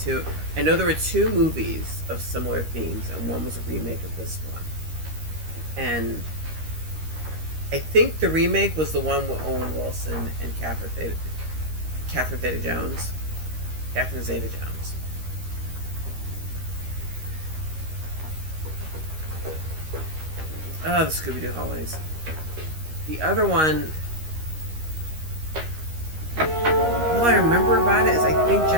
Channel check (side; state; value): left; late; 13 ms